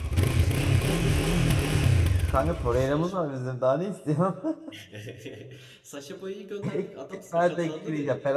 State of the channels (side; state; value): both; identical; correlation 1.00